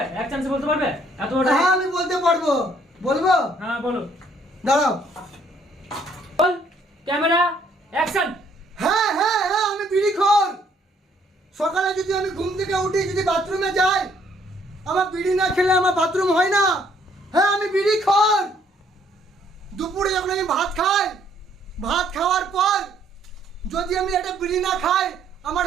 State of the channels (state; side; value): normal; both; correlation 0.65